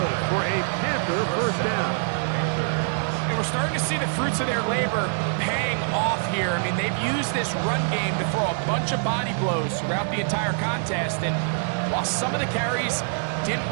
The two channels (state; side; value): silent; left; digital silence